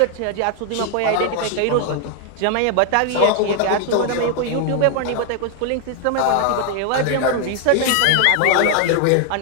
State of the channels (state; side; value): different; both; correlation 0.00